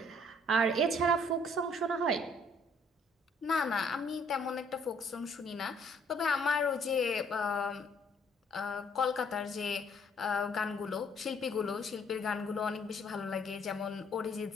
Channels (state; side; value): normal; both; correlation 0.63